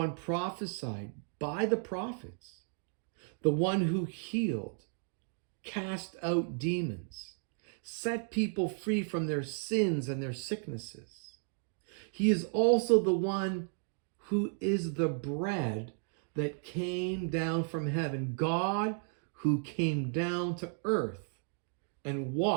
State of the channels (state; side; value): silent; left; 55 dB below the other